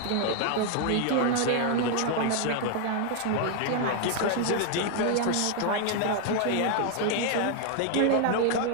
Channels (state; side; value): different; both; correlation 0.00